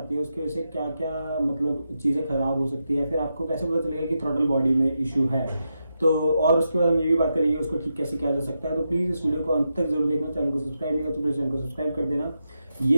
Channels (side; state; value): both; inverted; correlation -0.86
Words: है उसकी वजह से क्या क्या मतलब चीज़ें खराब हो सकती है, फिर आपको कैसे पता चलेगा कि थ्रॉटल बॉडी में इशू है। तो और उसके बाद हम ये भी बात करेंगे उसको ठीक कैसे किया जा सकता है। तो प्लीज इस वीडियो को अंत तक जरूर देखना। चैनल को सब्सक्राइब नहीं किया तो प्लीज चैनल को सब्सक्राइब कर देना।